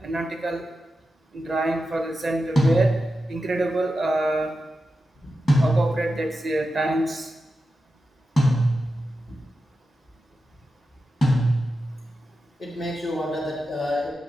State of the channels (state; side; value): normal; both; correlation 0.91